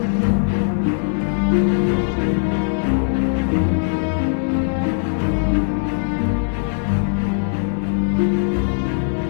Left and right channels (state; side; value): silent; right; 66 dB below the other